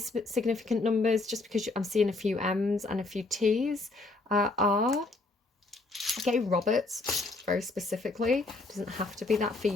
numbers, just because I'm seeing a few M's and a few T's. R, okay, Roberts, very specifically. Doesn't have to be that for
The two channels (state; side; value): quieter; right; 3.2 dB